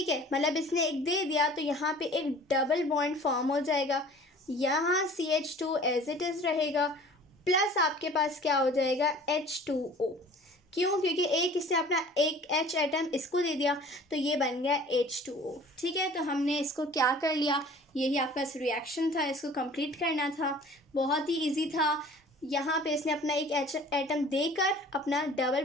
है, मतलब इसने एक दे दिया तो यहाँ पे एक डबल बॉन्ड फॉर्म हो जाएगा. यहाँ CH2 एज इट इज़ रहेगा प्लस आपके पास क्या हो जाएगा H2O. क्यों, क्योंकि एक इससे अपना एक H एटम इसको दे दिया तो ये बन गया H2O. ठीक है, तो हमने इसको क्या कर लिया, यही आपका रिएक्शन था, इसको कंप्लीट करना था. बहुत ही इजी था. यहाँ पे इसने अपना एक H एटम देकर अपना डबल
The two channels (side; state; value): both; normal; correlation 0.47